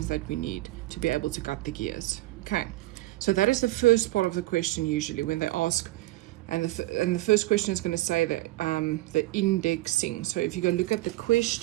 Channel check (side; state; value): left; quieter; 18.3 dB